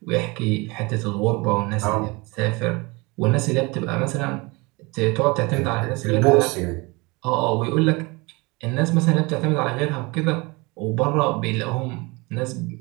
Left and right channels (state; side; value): quieter; left; 25.9 dB